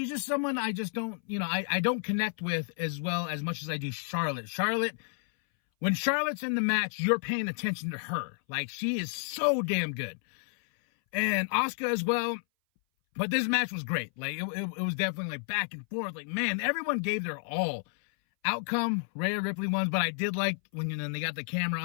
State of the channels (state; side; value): silent; right; 57 dB below the other